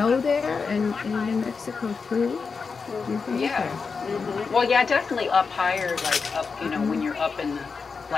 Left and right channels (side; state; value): right; quieter; 5.1 dB